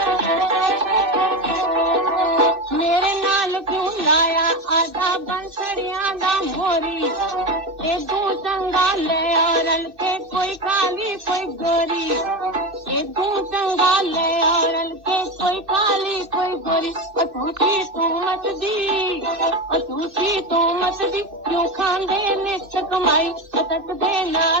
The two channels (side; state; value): left; late; 2.6 ms